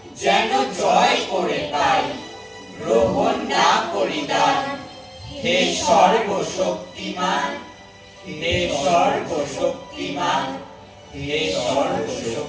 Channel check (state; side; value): identical; both; correlation 1.00